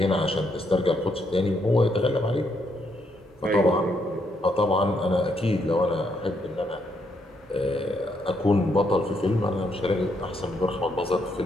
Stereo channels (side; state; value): both; normal; correlation 0.76